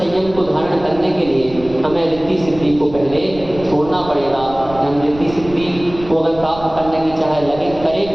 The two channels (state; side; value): noise; right; rumble, 15 dB below the sound